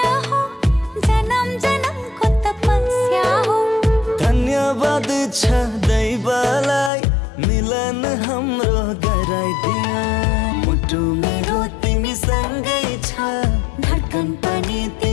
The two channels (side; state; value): right; drops out; at 6.9 s